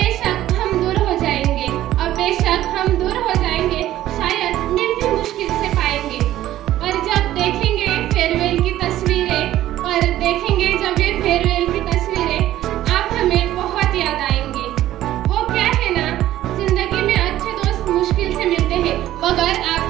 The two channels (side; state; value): left; quieter; 13.7 dB